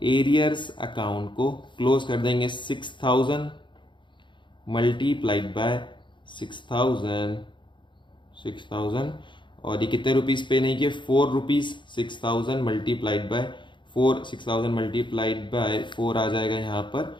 एरियर्स अकाउंट को क्लोज कर देंगे। 6000 मल्टीप्लाइड बाय 6000 और ये कितने रुपीस पे नहीं किए, 4 rupees. 6000 multiplied by 4, 6000 multiplied by 4 आ जाएगा यहाँ पर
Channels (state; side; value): late; right; 0.23 ms